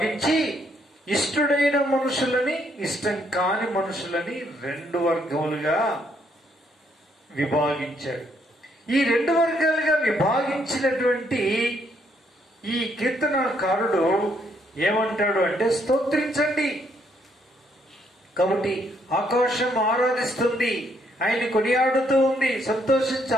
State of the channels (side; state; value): both; normal; correlation 0.71